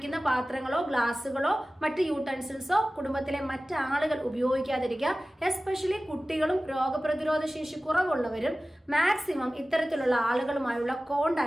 പാത്രങ്ങളോ ഗ്ലാസ്സുകളോ മറ്റ് യൂട്ടൻസിൽസോ കുടുംബത്തിലെ മറ്റ് ആളുകൾ ഉപയോഗിക്കാതിരിക്കുക. എസ്പെഷ്യലി കുട്ടികളും രോഗപ്രതിരോധ ശേഷി കുറവുള്ളവരും മാക്സിമം ഇത്തരത്തിലുള്ള ആളുകളുമായുള്ള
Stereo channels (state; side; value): normal; both; correlation 0.96